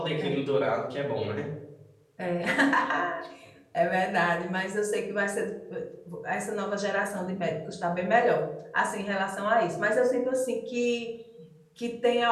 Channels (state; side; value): identical; both; correlation 1.00